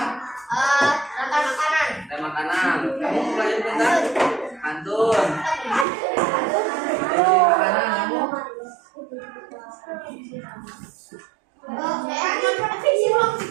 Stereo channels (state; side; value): drops out; left; at 5.9 s